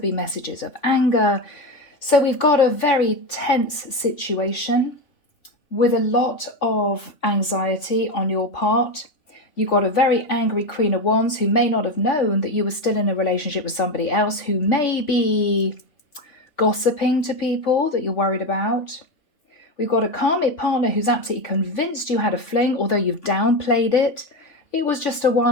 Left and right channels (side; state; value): right; late; 3.5 ms